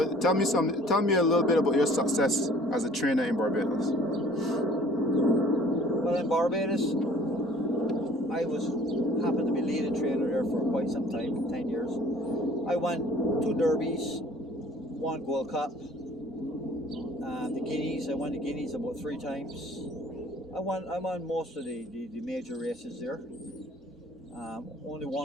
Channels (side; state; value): both; normal; correlation 0.53